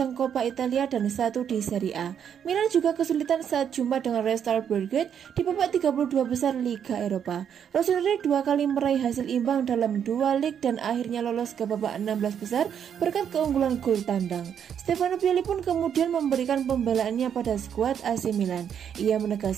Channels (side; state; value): left; quieter; 8.4 dB